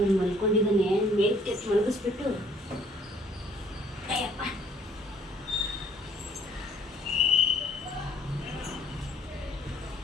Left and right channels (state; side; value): normal; both; correlation 0.60